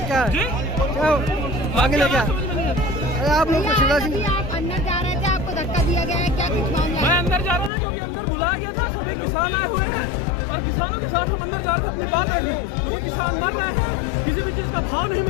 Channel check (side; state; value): right; drops out; at 7.7 s